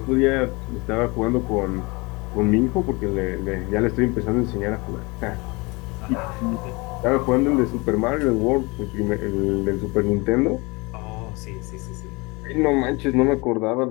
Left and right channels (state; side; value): quieter; right; 26.1 dB